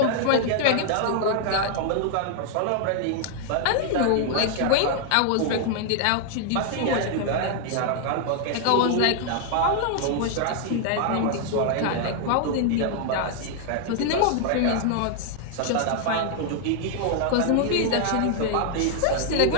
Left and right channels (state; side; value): different; both; correlation 0.00